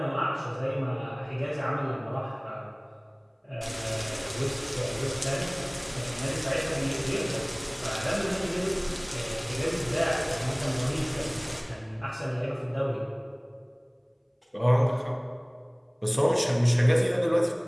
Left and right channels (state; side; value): identical; both; correlation 1.00